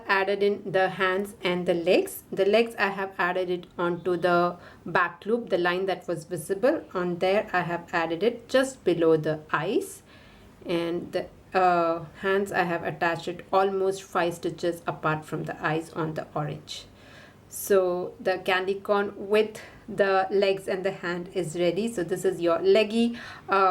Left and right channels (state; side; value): identical; both; correlation 1.00